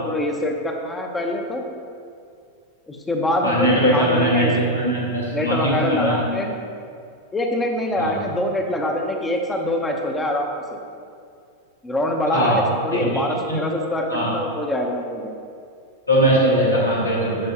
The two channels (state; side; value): normal; both; correlation 0.11